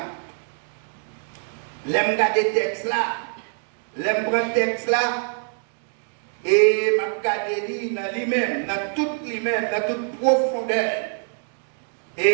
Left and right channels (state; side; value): silent; left; 62 dB below the other